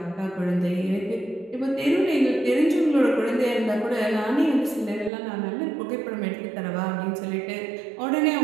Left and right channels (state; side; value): drops out; left; at 5.1 s